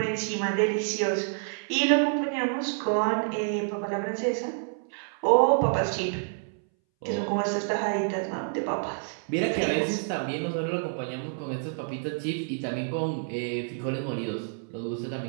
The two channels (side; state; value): left; silent; 59 dB below the other